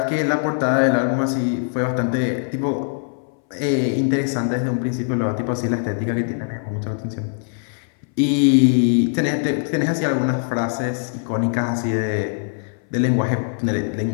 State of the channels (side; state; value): right; silent; 61 dB below the other